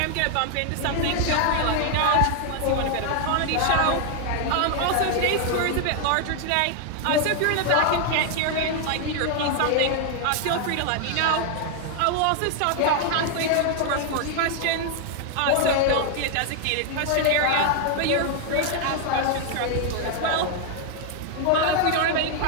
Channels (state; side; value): different; both; correlation 0.00